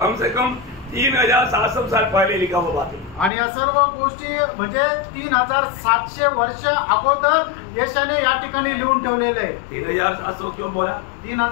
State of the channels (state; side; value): drops out; right; at 3.3 s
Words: से कम 3700 साल पहले लिखा हुआ बात है। आणि या सर्व गोष्टी म्हणजे 3700 वर्ष अगोदर यशाने या ठिकाणी लिहून ठेवलेले आहे। 3700 क्यों बोला?